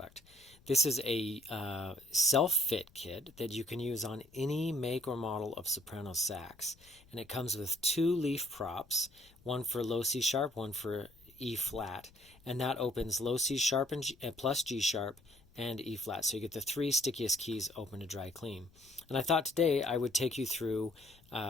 This is a self-fit kit that you can use on any make or model of soprano sax, and it comes with two leaf props, one for low C sharp, one for E flat, and that opens low C sharp and plus G sharp and E flat, so you get the three stickiest keys open to dry clean. And I thought today I would take you through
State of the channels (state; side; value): noise; left; rumble, 28 dB below the sound